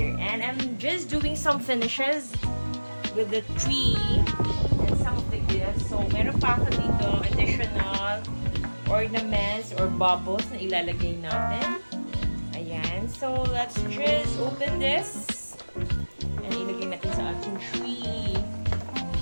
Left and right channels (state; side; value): inverted; both; correlation -1.00